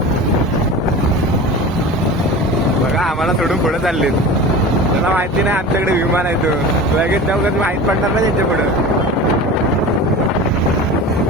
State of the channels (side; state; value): both; normal; correlation 0.33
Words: बघा आम्हाला सोडून पुढे चाललेत त्याला माहिती नाही आमच्याकडे विमान आहे तो लगेच जाऊ कधी माहित पडणार ना त्यांच्या पुढं